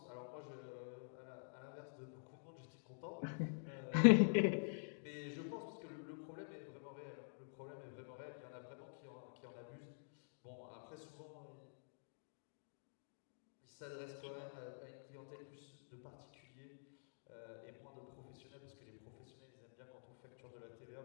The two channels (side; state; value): right; silent; digital silence